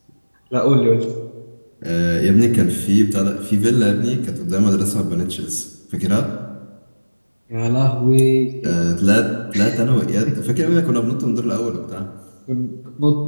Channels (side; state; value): both; inverted; correlation -1.00